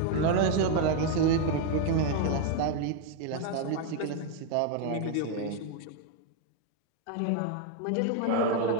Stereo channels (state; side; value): different; both; correlation 0.01